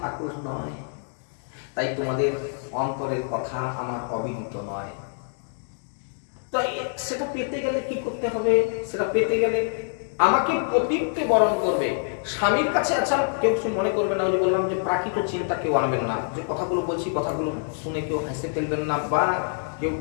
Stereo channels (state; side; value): silent; right; digital silence